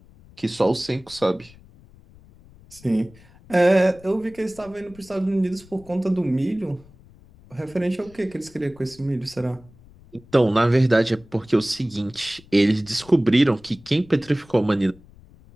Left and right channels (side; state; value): left; noise; rumble, 24 dB below the sound